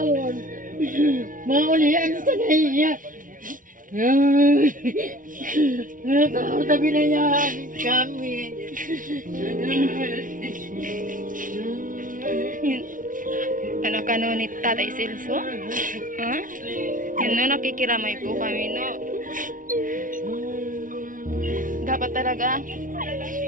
Maulihan sa naiya. Tao na binayaan kami. Anak ka no ni Tatay Celso? Ha? Yun no, nakikiramay po kami no. Dapat talaga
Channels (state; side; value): late; left; 0.39 ms